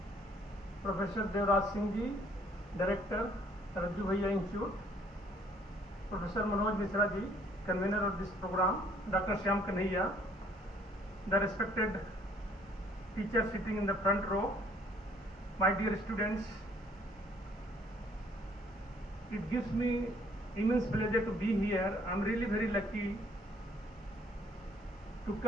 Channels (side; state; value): both; normal; correlation 0.61